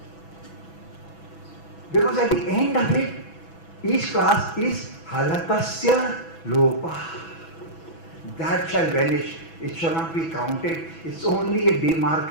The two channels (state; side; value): late; right; 6.1 ms